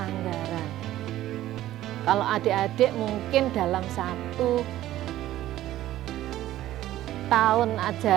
Kalau adik-adik mungkin dalam 1 tahun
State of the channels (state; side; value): quieter; left; 14.1 dB